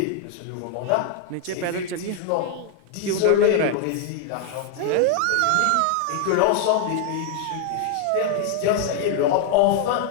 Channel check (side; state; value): both; different; correlation 0.00